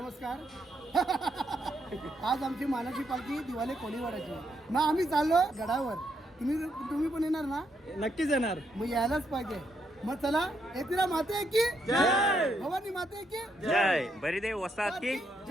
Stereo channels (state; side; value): normal; both; correlation 0.77